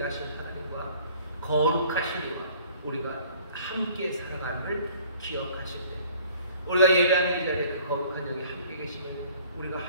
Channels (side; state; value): both; inverted; correlation -0.53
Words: 하나님과 거룩하신 이와 우리가 함께 살아감을 기억하실 때, 우리가 예배하는 이 자리에 그 거룩한 영이 함께 계시면 우리가